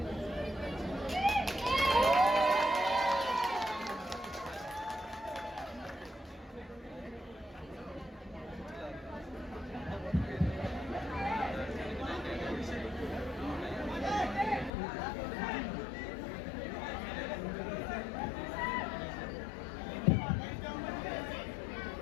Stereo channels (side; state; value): right; drops out; at 14.7 s